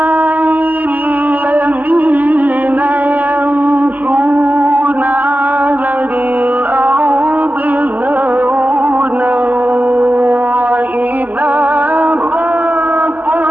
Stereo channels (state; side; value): late; left; 0.081 ms